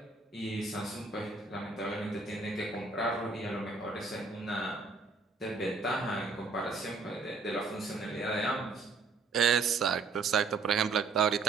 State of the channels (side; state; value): left; quieter; 4.3 dB